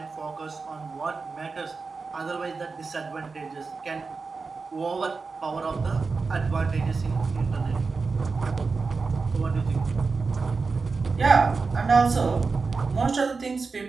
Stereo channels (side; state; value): left; quieter; 4.4 dB